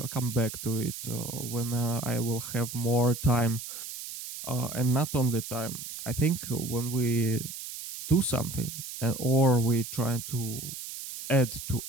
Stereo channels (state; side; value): noise; right; hiss, 9 dB below the sound